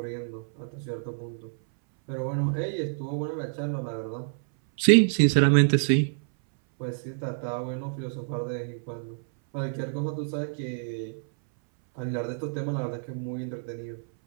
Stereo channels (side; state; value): left; silent; 59 dB below the other